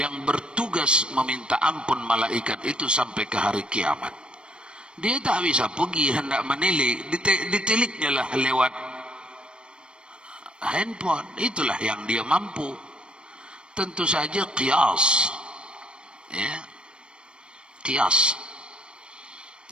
bertugas meminta ampun malaikat itu sampai ke hari kiamat. Dia tak bisa pergi hendak menilik, ditiliknya lah lewat handphone. Itulah yang dia mampu. Tentu saja qiyas. Ya. Qiyas.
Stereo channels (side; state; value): left; late; 0.054 ms